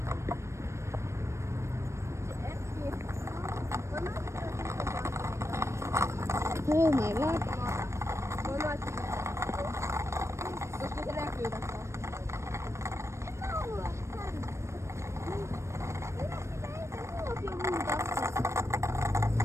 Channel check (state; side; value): late; left; 0.13 ms